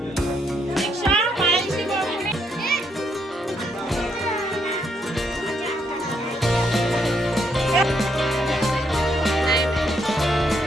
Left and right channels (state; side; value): normal; both; correlation 0.75